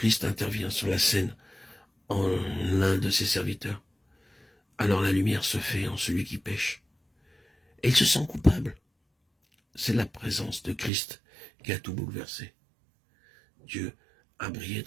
intervient sur la scène en l'un de ses serviteurs. Alors la lumière se fait en celui qui pêche. Et il se sent coupable. C'est la présence de Christ qui a tout bouleversé. Dieu a brillé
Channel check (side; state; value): left; drops out; at 10.9 s